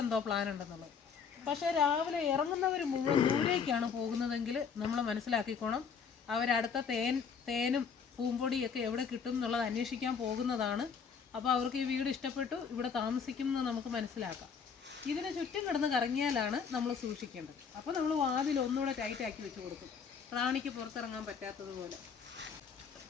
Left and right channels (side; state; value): right; quieter; 6.3 dB